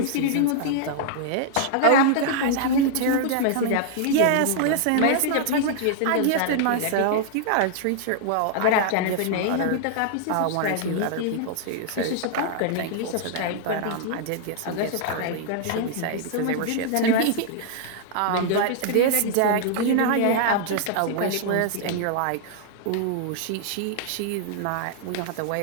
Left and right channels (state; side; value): different; both; correlation -0.01